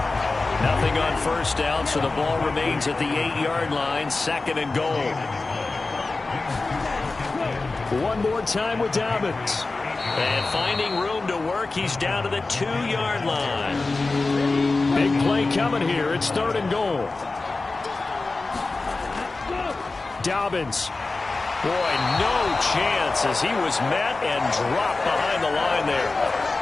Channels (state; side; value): quieter; right; 3.5 dB